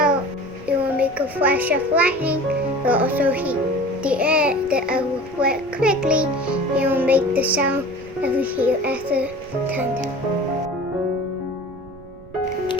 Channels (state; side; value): noise; right; rumble, 20 dB below the sound